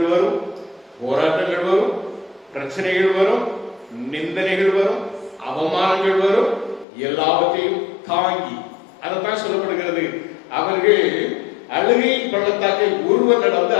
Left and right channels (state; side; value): drops out; right; at 6.9 s